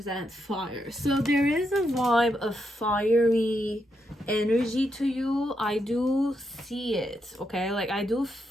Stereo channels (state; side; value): normal; both; correlation 0.82